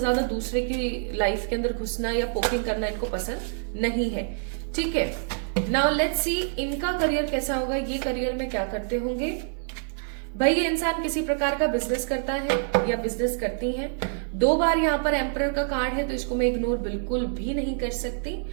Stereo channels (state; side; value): silent; left; digital silence